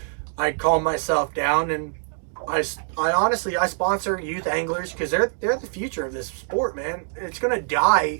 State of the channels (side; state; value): left; silent; digital silence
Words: I calmed myself down, and I honestly sponsor youth anglers, because they're the future of this sport, man. It's gonna